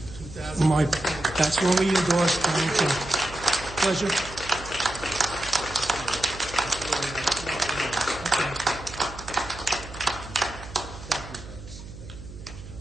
That's when we endorse Donald Trump. Pleasure.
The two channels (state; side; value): noise; right; hum, 14 dB below the sound